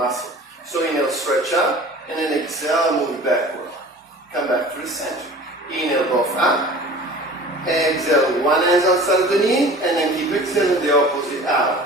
So inhale, stretch up, and then exhale, move it backward. Come back to the center. Inhale, both up. Exhale, one hand outside of the knee, and then keep exhaling the opposite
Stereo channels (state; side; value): normal; both; correlation 0.42